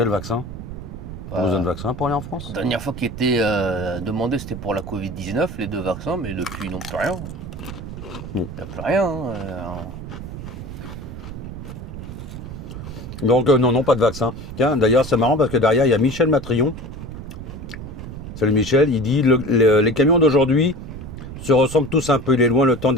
vaccin? Tu as besoin de vaccin pour aller en France? La dernière fois qui était demandé, c'était pour la Covid-19, les 2 vaccins, mais depuis, non, plus rien. Il n'y a plus rien. Donc, non, pas de vaccin. Tiens, d'ailleurs, c'est marrant parce que derrière, il y a Michel Matrion. Salut Michel, il dit les camions d'aujourd'hui se ressemblent tous un peu. Il est loin le temps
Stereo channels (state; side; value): noise; right; rumble, 10 dB below the sound